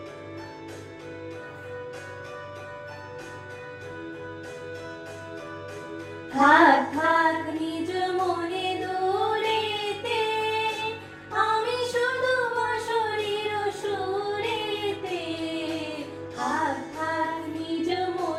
থাক থাক নিজ মনে দূরেতে, আমি শুধু বাঁশরীর সুরেতে। থাক থাক নিজ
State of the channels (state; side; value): identical; both; correlation 1.00